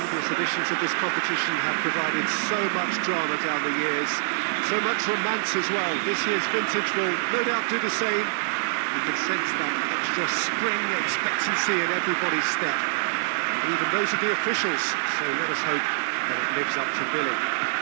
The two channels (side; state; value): left; silent; digital silence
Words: Previous editions of this competition have provided so much drama down the years, so much romance as well. This year's vintage will no doubt do the same. You can sense that extra spring expectancy in everybody's step, even those of the officials, so let us hope that it lives up to billing.